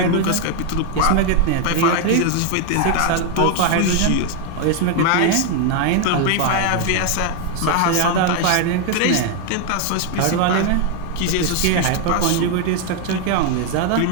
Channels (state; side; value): different; both; correlation 0.01